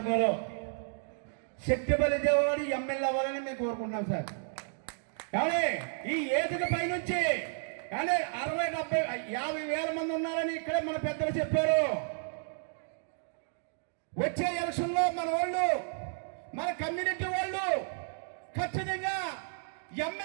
శక్తి బలిచేవాడు ఎమ్మెల్యే అవ్వాలని మేము కోరుకుంటున్నాం సార్. కానీ ఈ ఏదిక పై నుంచి కానీ 60, 70, 50 వేల మంది ఉన్నారని ఇక్కడే మన పెద్దలు చెప్పారు. వచ్చే ఎలక్షన్ లో మన వాళ్ళు, మన కమ్యూనిటీ వాళ్ళు ఖచ్చితంగా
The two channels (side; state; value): left; silent; digital silence